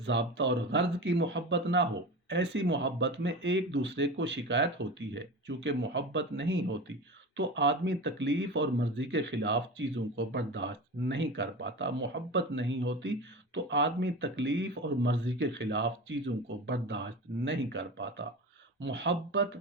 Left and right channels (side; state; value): both; normal; correlation 0.29